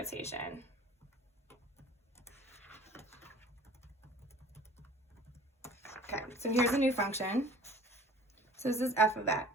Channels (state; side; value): normal; both; correlation 0.48